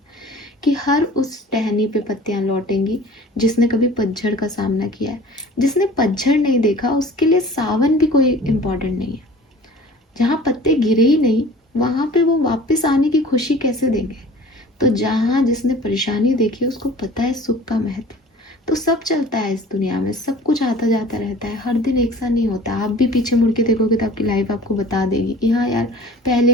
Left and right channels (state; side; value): normal; both; correlation 0.45